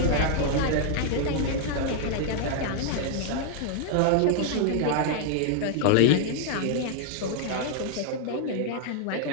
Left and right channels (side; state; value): both; different; correlation 0.00